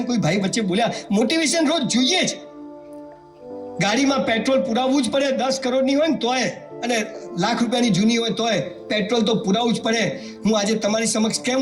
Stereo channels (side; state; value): both; identical; correlation 1.00